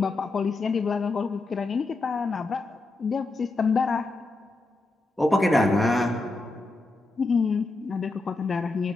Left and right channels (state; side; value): quieter; right; 3.2 dB